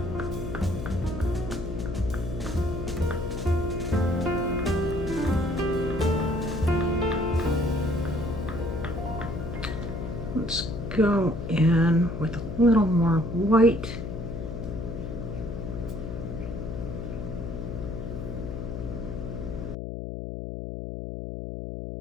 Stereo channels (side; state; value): left; noise; hum, 6 dB below the sound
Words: Let's go in with a little more white.